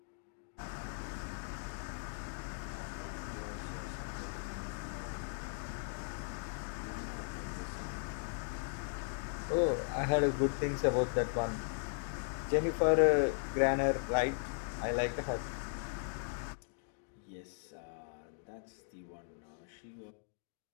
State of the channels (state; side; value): silent; right; digital silence